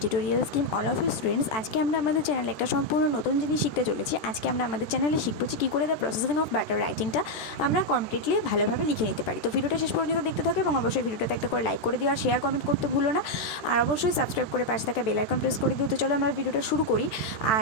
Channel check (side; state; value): right; late; 14 ms